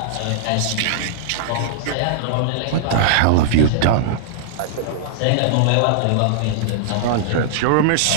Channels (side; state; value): both; different; correlation -0.01